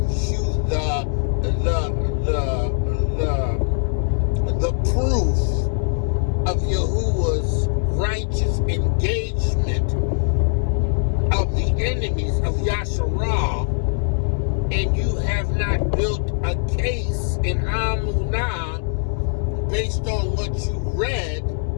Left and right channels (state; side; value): silent; right; digital silence